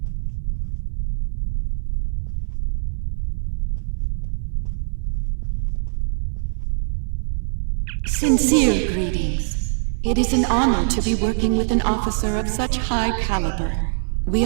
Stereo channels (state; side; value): silent; left; 64 dB below the other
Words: Sincere greetings. It is an honor to be working with an officer of such high caliber. We